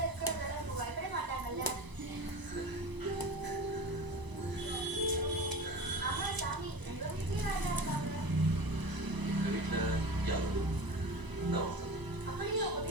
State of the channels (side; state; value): left; late; 1.0 ms